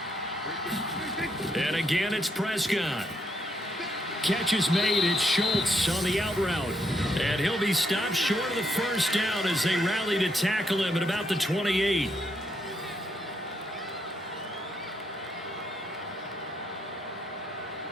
And again, it's Prescott. Catch is made. It's Schultz on the out route. And he'll be stopped short of the first down as they rally to tackle him at about the 28.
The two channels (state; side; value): normal; both; correlation 0.76